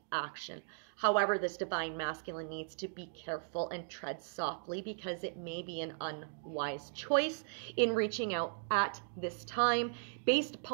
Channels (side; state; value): left; silent; digital silence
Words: action. However, this divine masculine needs to be careful and tread softly because it may be an unwise choice in reaching out at this time based